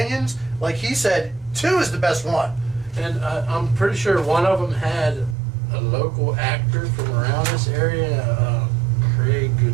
Like he said, 2 is the best one. And I'm pretty sure one of them had a local actor from around this area, Craig.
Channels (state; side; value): drops out; left; at 5.4 s